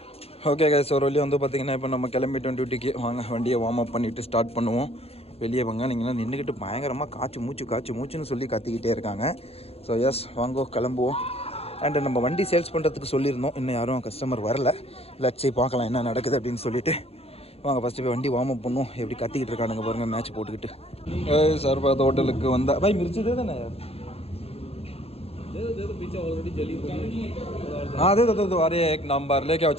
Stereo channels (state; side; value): late; right; 0.29 ms